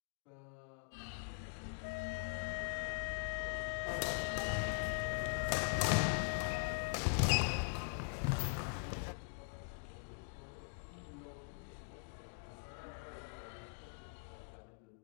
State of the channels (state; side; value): quieter; right; 38.9 dB